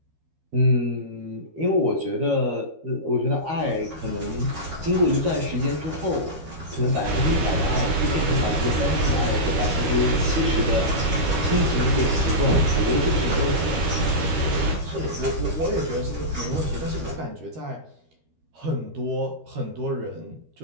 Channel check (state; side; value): late; left; 13 ms